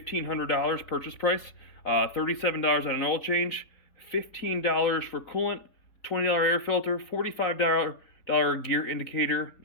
purchase price, $37 on an oil change, $15 for coolant, $20 air filter, $45 gear indicator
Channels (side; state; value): right; late; 3.7 ms